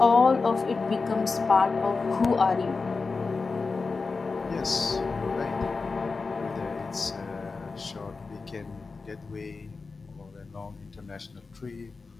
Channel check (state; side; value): quieter; right; 4.3 dB